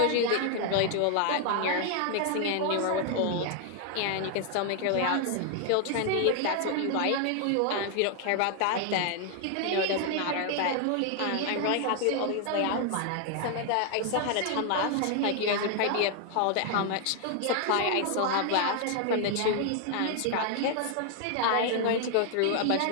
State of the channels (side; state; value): both; different; correlation 0.00